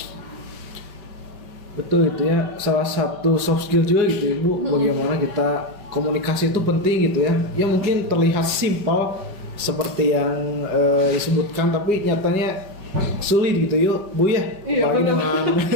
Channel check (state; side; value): late; left; 5.2 ms